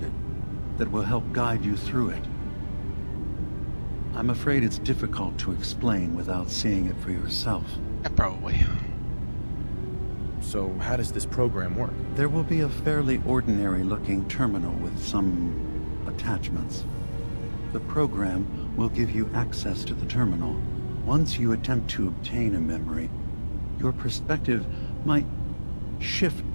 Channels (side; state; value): both; inverted; correlation -1.00